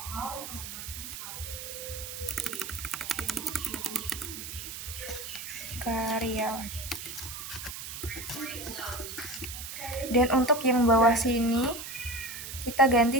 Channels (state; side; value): noise; right; hiss, 9 dB below the sound